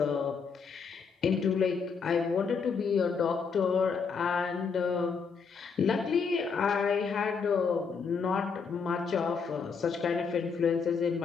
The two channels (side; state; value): right; quieter; 5.6 dB